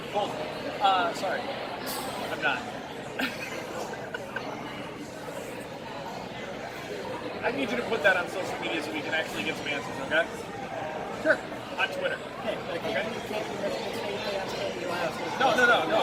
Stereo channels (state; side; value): identical; both; correlation 1.00